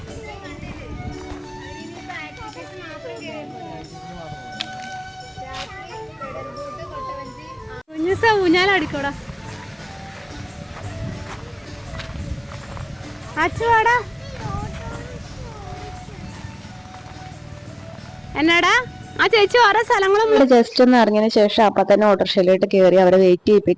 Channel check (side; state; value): both; identical; correlation 1.00